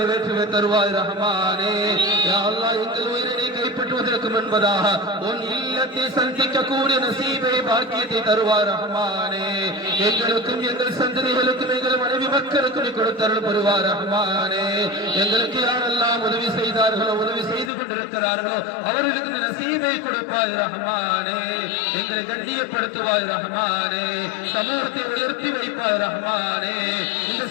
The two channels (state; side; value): drops out; right; at 17.7 s